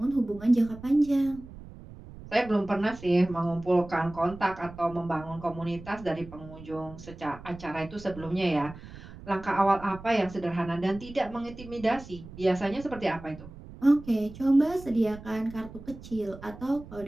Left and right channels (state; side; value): noise; right; rumble, 16 dB below the sound